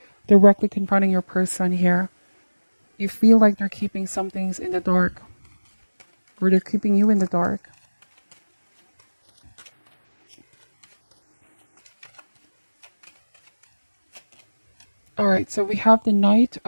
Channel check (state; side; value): inverted; both; correlation -1.00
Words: directly confronting your person here. You feel like they're keeping some things in the dark, or they're keeping you in the dark. All right, so we have the Knight